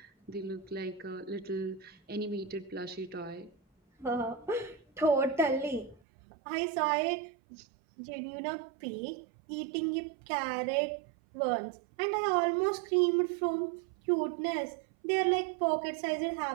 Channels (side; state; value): left; drops out; at 6.0 s